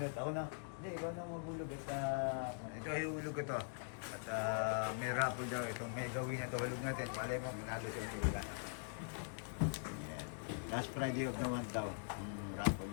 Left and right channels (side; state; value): right; silent; digital silence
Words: Ako na. Hindi, ikaw na magbubunot. Ito, ihulog ko to. At may raffle daw. Itong may gawin na to. Hulog natin. Palay mo, manalo siya ang hula. Ayan. Last Friday of the month daw. Ang raffle